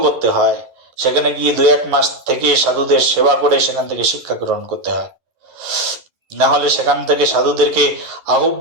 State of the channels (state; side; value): late; left; 11 ms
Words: করতে হয়, সেখানে গিয়ে 2-1 মাস থেকে সাধুদের সেবা করে সেখান থেকে শিক্ষা গ্রহণ করতে হয়। না হলে সেখান থেকে সাধুদেরকে